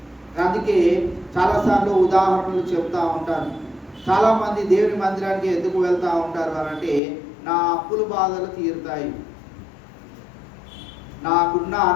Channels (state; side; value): drops out; right; at 7.0 s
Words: అందుకే చాలాసార్లు ఉదాహరణలు చెప్తా ఉంటాను. చాలామంది దేవుని మందిరానికి ఎందుకు వెళ్తూ ఉంటారు అని అంటే, నా అప్పుల బాధలు తీరుతాయి, నాకున్న